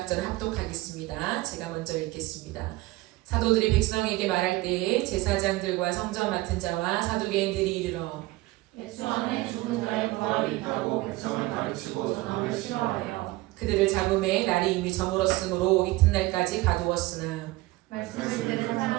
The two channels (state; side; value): quieter; left; 19.7 dB